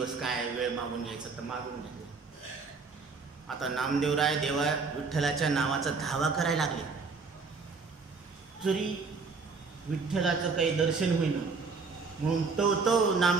काय वेळ मागून घ्यायचं तर मागून घेतलं. आता नामदेवराय देवा विठ्ठलाच्या नावाचा धावा करायला लागले. जरी विठ्ठलाचं काही दर्शन होईना म्हणून तो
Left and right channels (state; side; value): quieter; left; 4.6 dB